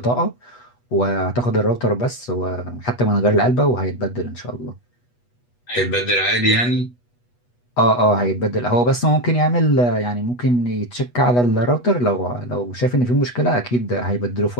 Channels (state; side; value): late; right; 8.2 ms